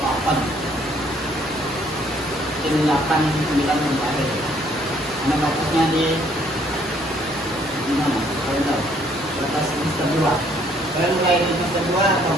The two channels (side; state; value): both; normal; correlation 0.64